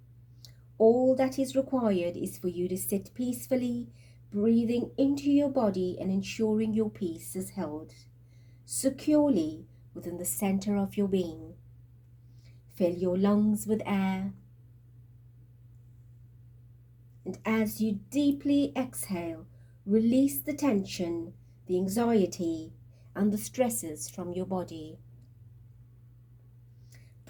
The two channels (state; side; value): identical; both; correlation 1.00